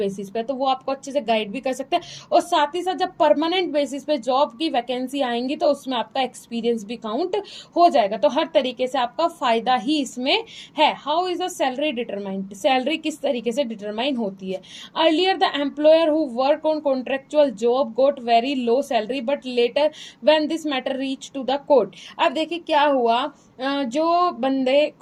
पे, तो वो आपको अच्छे से गाइड भी कर सकते हैं। और साथ ही साथ जब परमानेंट बेसिस पे जॉब की वैकेंसी आएंगी तो उसमें आपका एक्सपीरियंस भी काउंट हो जाएगा। तो हर तरीके से आपका फायदा ही इसमें है। How is the salary determined, salary किस तरीके से डिटरमाइन होती है। Earlier the employer who work on contractual job got very low salary but later when this matter reach to the court. अब देखिए क्या हुआ, जो बंदे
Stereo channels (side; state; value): both; identical; correlation 1.00